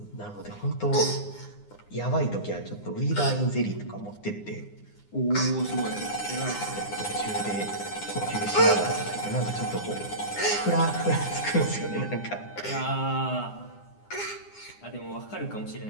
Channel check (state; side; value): late; right; 9.8 ms